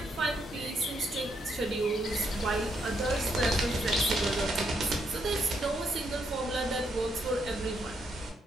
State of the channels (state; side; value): normal; both; correlation 0.76